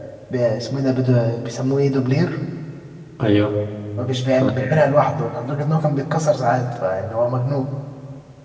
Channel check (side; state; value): both; identical; correlation 1.00